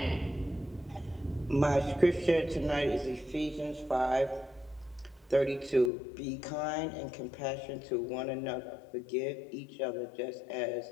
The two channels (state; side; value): drops out; right; at 5.9 s